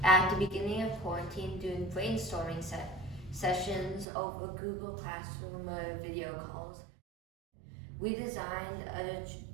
at the beginning of quarantine doing brainstorming sessions over Google Classroom video calls. We designed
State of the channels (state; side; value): drops out; left; at 4.0 s